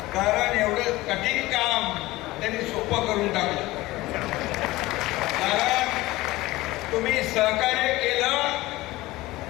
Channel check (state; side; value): quieter; right; 18.8 dB